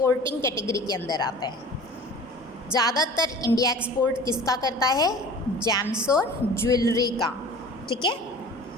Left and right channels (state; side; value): normal; both; correlation 0.42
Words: कैटेगरी के अंदर आता है। ज़्यादातर इंडिया एक्सपोर्ट किसका करता है, जेम्स और ज्वेलरी का, ठीक है।